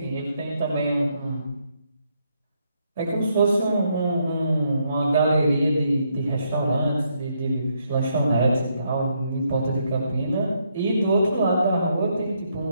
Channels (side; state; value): both; inverted; correlation -0.76